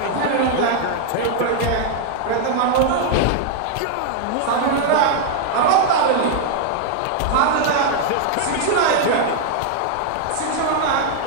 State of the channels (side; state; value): both; different; correlation 0.00